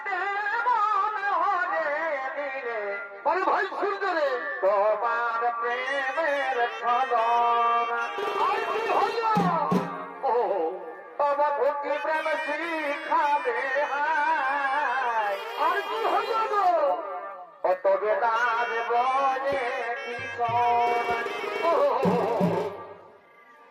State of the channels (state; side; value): identical; both; correlation 1.00